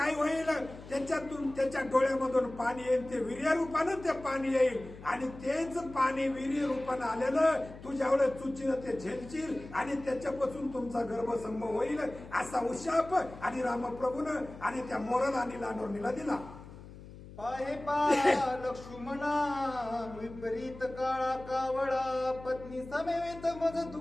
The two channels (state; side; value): noise; left; hum, 16 dB below the sound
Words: होईल, त्याच्यातून त्याच्या डोळ्यामधून पाणी येईल, ते वीर्य रूपानं ते पाणी येईल आणि तेच पाणी वीर्य रूपानं आलेलं तू ज्यावेळेस चुचीनं ते झेलशील आणि त्याच्यापासून तुमचा गर्भसंभव होईल, असा उशाप आणि रामप्रभूनं आणि त्या मोराला आणि लांडोरणीला दिला. पाहे पा लक्ष्मणा विपरीत काळा कावळा पत्नी समेत मज